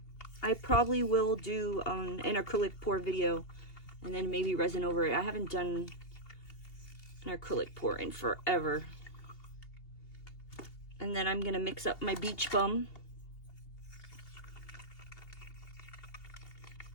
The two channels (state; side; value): late; right; 2.8 ms